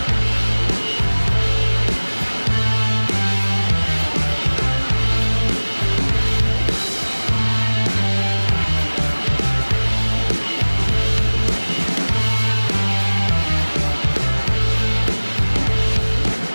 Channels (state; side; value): inverted; both; correlation -1.00